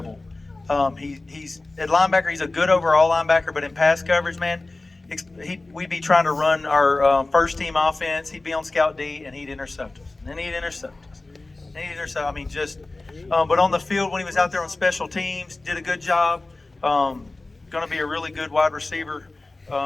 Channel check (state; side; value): quieter; right; 3.1 dB